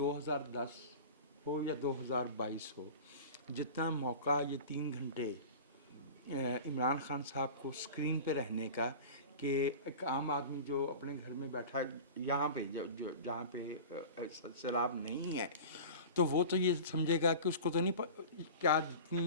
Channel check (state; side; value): inverted; both; correlation -0.35